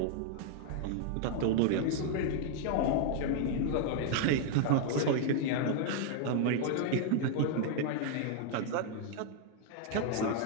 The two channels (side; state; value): both; different; correlation 0.00